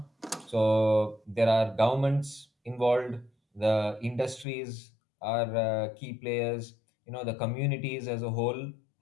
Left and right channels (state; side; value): drops out; right; at 4.5 s